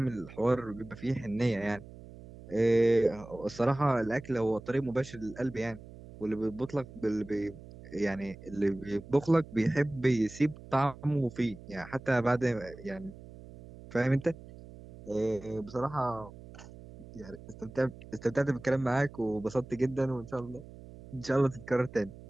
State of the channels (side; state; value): right; noise; hum, 17 dB below the sound